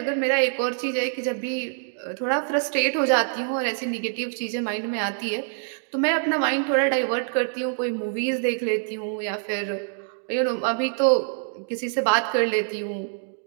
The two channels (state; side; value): silent; left; digital silence